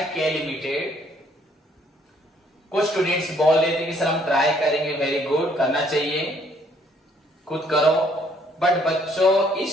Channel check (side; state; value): both; normal; correlation 0.64